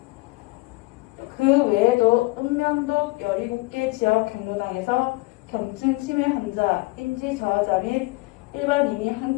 그 외에도 읍면동 17개 지역 경로당에서 경증 치매 환자, 인지 저하자 및 일반인이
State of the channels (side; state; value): right; quieter; 23.8 dB